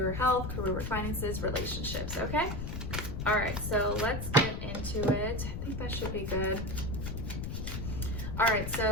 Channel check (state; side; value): noise; left; rumble, 4 dB below the sound